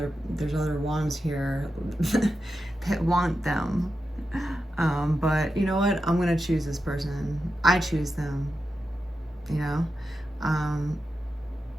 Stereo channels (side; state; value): both; normal; correlation 0.89